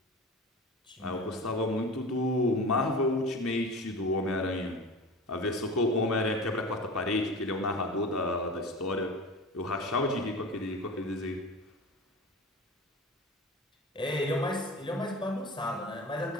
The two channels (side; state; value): both; normal; correlation 0.33